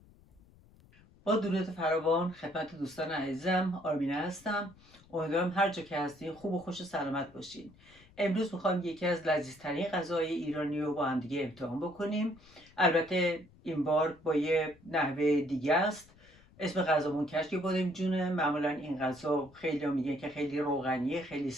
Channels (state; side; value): noise; left; rumble, 26 dB below the sound